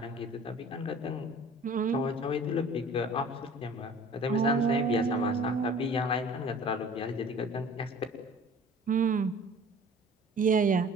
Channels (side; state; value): both; normal; correlation 0.46